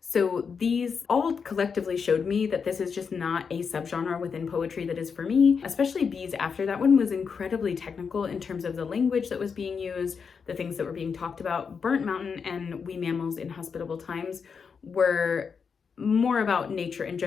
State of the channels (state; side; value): quieter; right; 6.0 dB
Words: So these all collectively showed me that this is just not a subgenre within poetry that is for me, especially Bees After. That one was incredibly technical in terms of the language that was being used, the things that were being talked about. Burnt Mountain and We Mammals in Hospitable Times were more about nature in